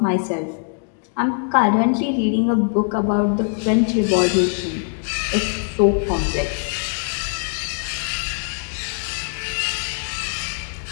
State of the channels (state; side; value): silent; right; 58 dB below the other